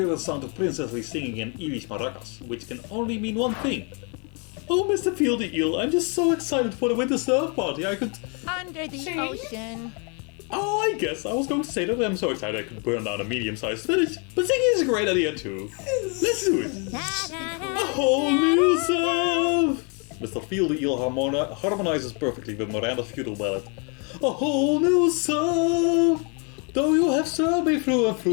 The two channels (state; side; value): quieter; right; 35.7 dB